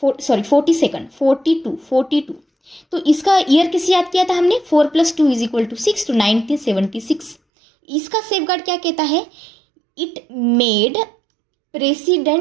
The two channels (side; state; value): left; drops out; at 7.4 s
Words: 42। तो इसका ईयर किसे याद किया था हमने, 4 + 2 = 6, तो 1976। इसका सेफगार्ड क्या कहता है, it made